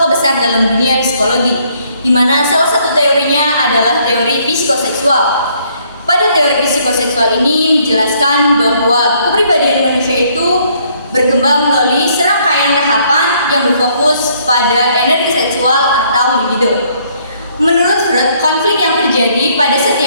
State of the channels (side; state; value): both; inverted; correlation -0.66